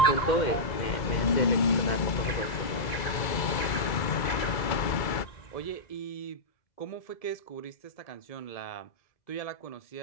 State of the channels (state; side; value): late; right; 2.3 ms